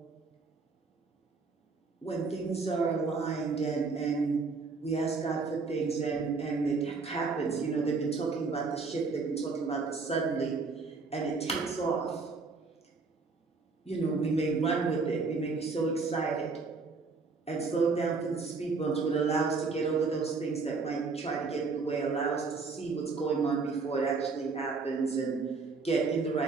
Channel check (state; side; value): quieter; left; 4.3 dB